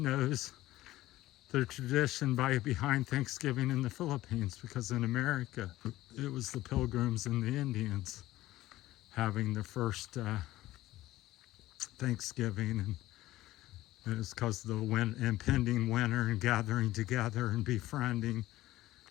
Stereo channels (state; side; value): quieter; right; 16.1 dB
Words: the tradition behind Thanksgiving in the Philippines, because in America, it was the Pilgrims and the Indians having the first Thanksgiving, and it was because of the impending winter and gathering together and befriending